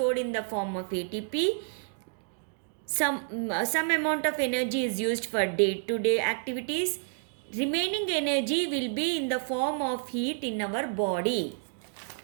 in the form of ATP. Some amount of energy is used for day-to-day activities. Remaining energy will be in the form of heat in our body.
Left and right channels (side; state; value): left; silent; digital silence